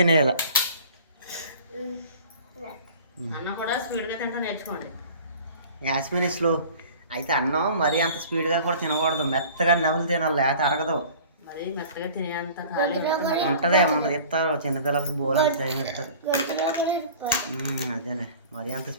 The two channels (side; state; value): both; inverted; correlation -0.45